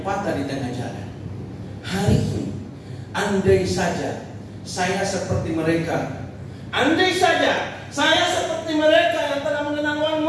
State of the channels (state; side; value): identical; both; correlation 1.00